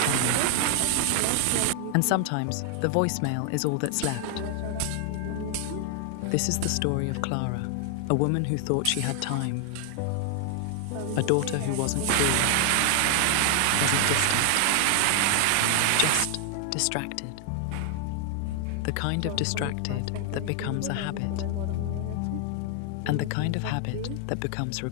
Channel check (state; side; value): different; both; correlation 0.00